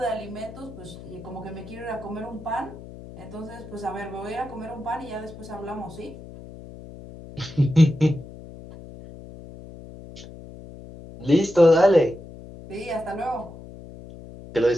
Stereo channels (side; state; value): left; noise; hum, 15 dB below the sound